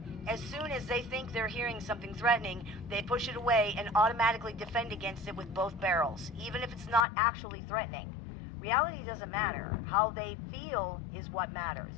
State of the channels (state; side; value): drops out; right; at 7.1 s